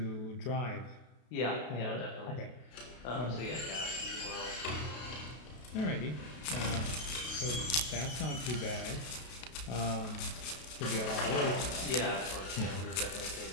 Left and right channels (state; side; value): late; right; 32 ms